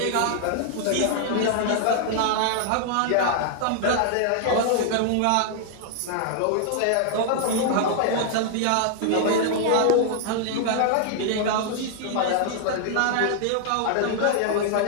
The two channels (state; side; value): different; both; correlation -0.01